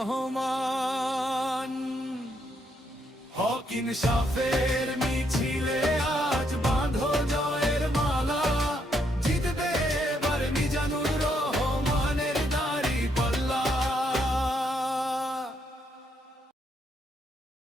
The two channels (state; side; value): normal; both; correlation 0.75